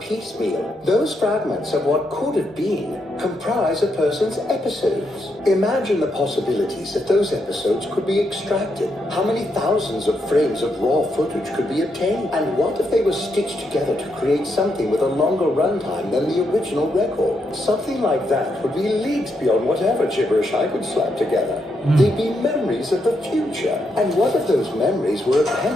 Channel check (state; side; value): normal; both; correlation 0.80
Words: those fragments of what could have been comprise a person's episodes. Imagine the possibilities if those episodes could be extracted. How many thousands of frames of raw footage could be obtained? And what if they were stitched together to create something with a longer runtime than the original record? Something like that would be leagues beyond whatever gibberish I could slap together. They'd be memories of the future. And what if those memories were